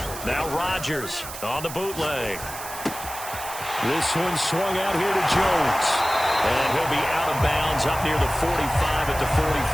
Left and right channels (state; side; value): noise; right; hiss, 11 dB below the sound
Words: Now Rodgers on the bootleg. This one swung out here to Jones. And he'll be out of bounds up near the 45 at the